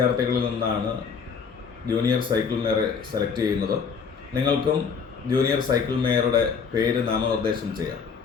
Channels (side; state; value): right; quieter; 6.0 dB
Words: നിന്നാണ് ജൂനിയർ സൈക്കിൾ മേയറെ സെലക്ട് ചെയ്യുന്നത്. നിങ്ങൾക്കും ജൂനിയർ സൈക്കിൾ മേയറുടെ പേര് നാമനിർദ്ദേശം ചെയ്യാം.